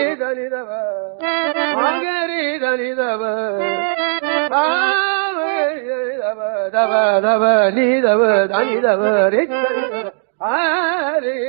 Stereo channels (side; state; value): left; silent; digital silence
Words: மகரிதலிதவ தவ தவ நீதவ தனிதவ